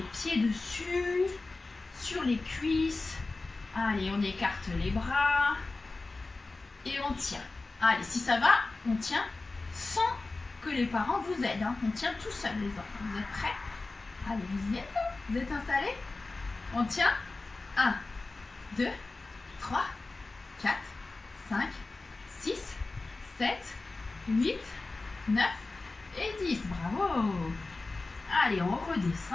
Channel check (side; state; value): right; quieter; 3.4 dB